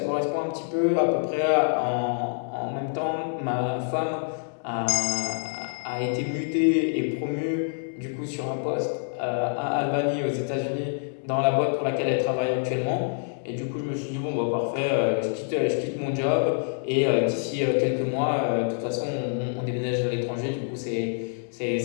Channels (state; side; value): silent; right; 61 dB below the other